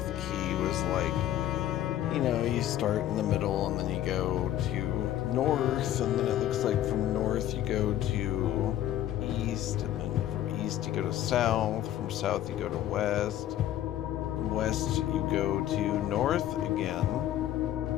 key was like, you know, you start in the middle and then you go to north, and then it looks like from north you go to east, and then from east you go to south, from south you go to west, from west you go to north again,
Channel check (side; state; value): right; quieter; 12.2 dB